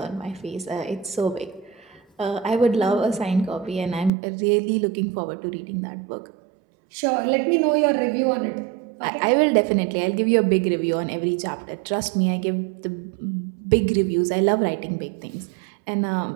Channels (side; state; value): left; drops out; at 4.1 s